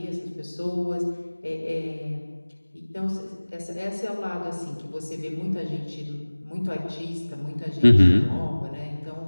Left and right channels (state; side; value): inverted; both; correlation -1.00